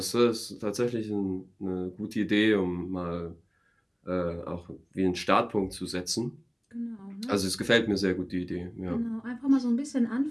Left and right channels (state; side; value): identical; both; correlation 1.00